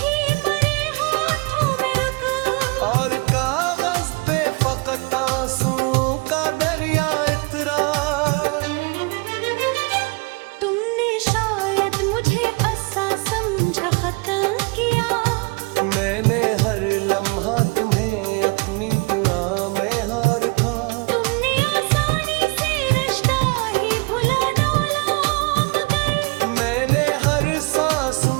मरे हाथों में रुक, और कागज पे फकत आंसुओं का दरिया इतरा। तुमने शायद मुझे ऐसा समझा खत्म किया, मैंने हर लम्हा तुम्हें अपनी दुआ में हार था। तुमने आसानी से रिश्ता ही भुला डाला मगर मैंने हर सांस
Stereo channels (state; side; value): quieter; left; 28.8 dB